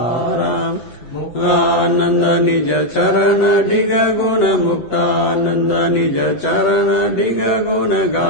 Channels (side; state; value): right; late; 8.0 ms